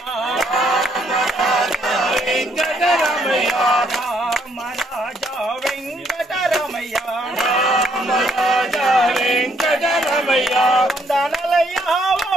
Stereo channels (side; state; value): both; normal; correlation 0.70